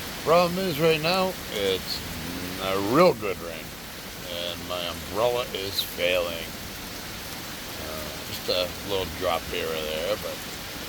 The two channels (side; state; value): left; noise; hum, 19 dB below the sound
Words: Problem is right now, it's a real good rain, and my umbrella is failing. Just a little drop here or there, but